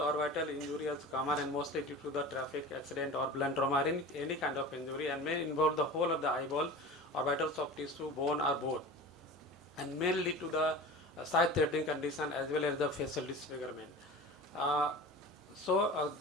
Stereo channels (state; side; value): normal; both; correlation 0.35